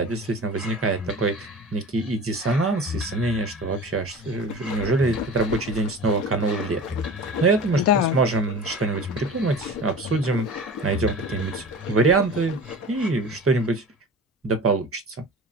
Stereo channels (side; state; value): both; normal; correlation 0.36